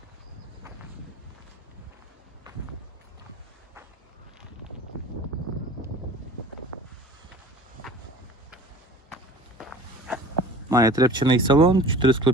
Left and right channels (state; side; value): normal; both; correlation 0.43